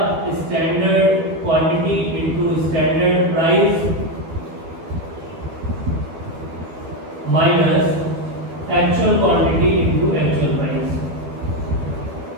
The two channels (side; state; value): left; late; 13 ms